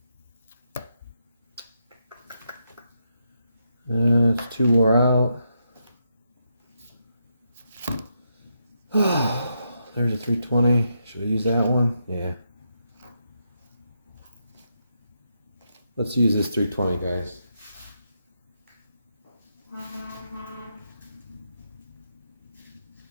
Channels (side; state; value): both; inverted; correlation -0.82